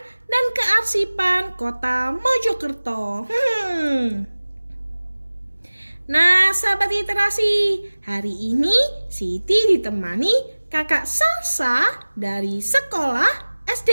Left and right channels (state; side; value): inverted; both; correlation -1.00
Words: dan Kearsipan Kota Mojokerto. Nah, sahabat literasi, hari ini Siti ditemani kakak Salsa dari sekolah